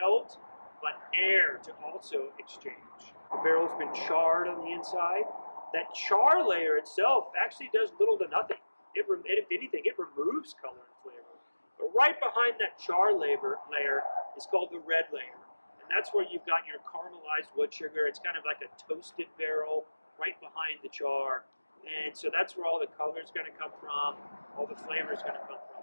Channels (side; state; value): both; inverted; correlation -1.00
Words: but air to also exchange. The barrel's been charred on the inside. That char layer itself actually does little to nothing. If anything, it removes color and flavor. But right behind that char layer is called the red layer. And that's where you've got your caramelized wood sugar. It's kind of like a toasted barrel right behind the char. And so that's where all the color is going to come from, all the flavor is going to come